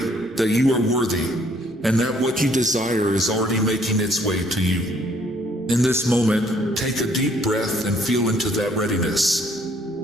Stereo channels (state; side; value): normal; both; correlation 0.64